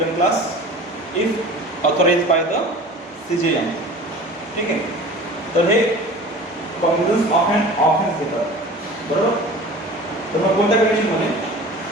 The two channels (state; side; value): normal; both; correlation 0.40